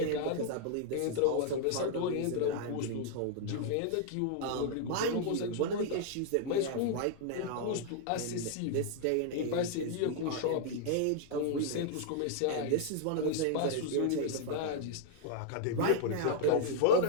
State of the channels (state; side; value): different; both; correlation 0.00